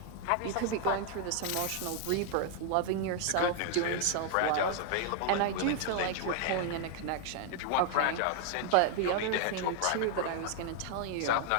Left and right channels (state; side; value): different; both; correlation 0.00